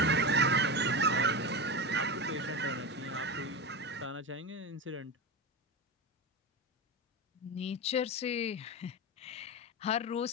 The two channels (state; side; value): normal; both; correlation 0.20